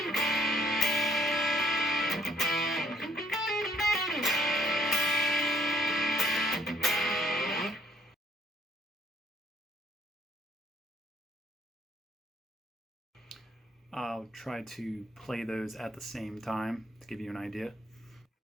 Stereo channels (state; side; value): normal; both; correlation 0.64